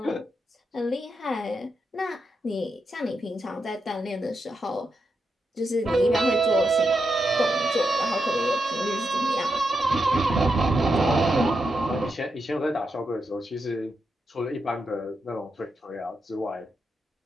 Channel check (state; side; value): normal; both; correlation 0.85